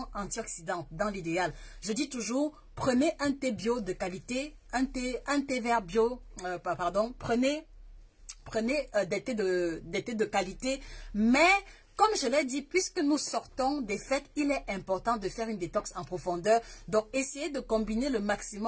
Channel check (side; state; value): both; identical; correlation 1.00